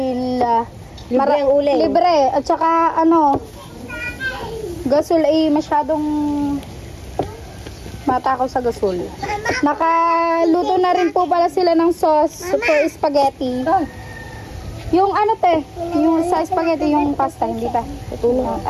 libre ang uling. Libre at saka gasol ay masyadong matakaw sa gasol. Nakaluto na rin po pala sila ng sauce for spaghetti. Yung yung sa spaghetti, yung pasta, hindi pa.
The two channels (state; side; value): identical; both; correlation 1.00